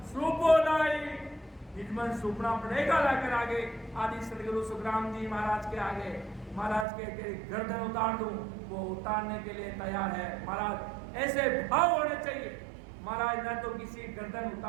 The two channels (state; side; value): drops out; left; at 6.9 s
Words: सूपो लाई, निजमन सूपना पड़ेगा लाकर आगे आदि सदगुरु सुखराम जी महाराज के आगे। महाराज के गर्दन उतार दूं, वो उतारने के लिए तैयार है। महाराज ऐसे भाव होने चाहिए, महाराज न तो किसी गर्दन